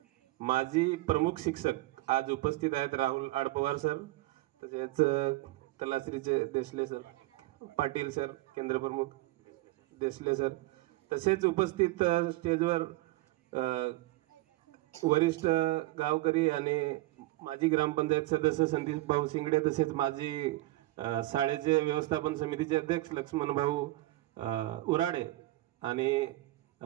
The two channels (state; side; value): quieter; left; 18.6 dB